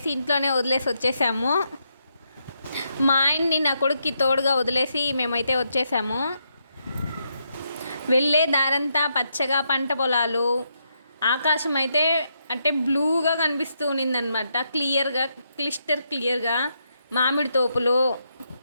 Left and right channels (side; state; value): both; inverted; correlation -0.80